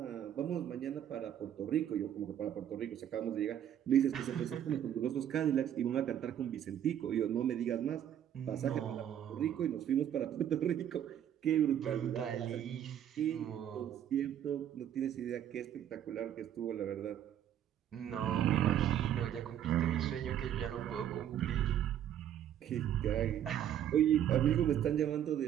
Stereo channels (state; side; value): quieter; left; 10.3 dB